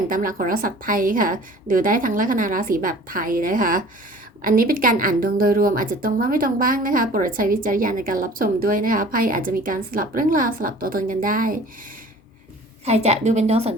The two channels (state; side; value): normal; both; correlation 0.46